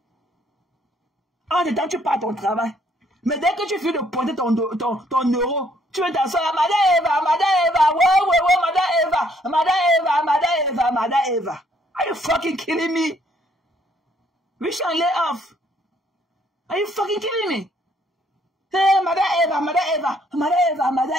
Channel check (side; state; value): both; normal; correlation 0.66